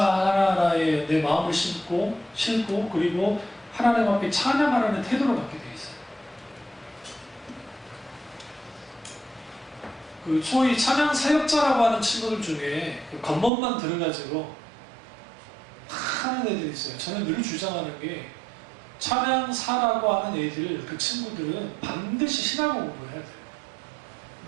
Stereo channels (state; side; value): drops out; left; at 13.5 s